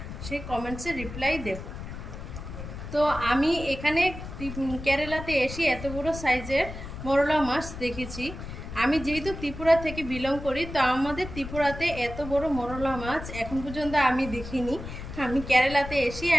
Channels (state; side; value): noise; left; rumble, 10 dB below the sound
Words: সেই কমেন্টসে রিপ্লাই দেব। তো আমি এখানে কেরালাতে এসে এত বড় সাইজের মরলা মাছ দেখেছি। আমি যেহেতু ত্রিপুরা থেকে বিলং করি, তো আমাদের ত্রিপুরাতে এত বড় মরলা মাছ এখন পর্যন্ত আমি দেখিনি। আমি কেরালাতে এসে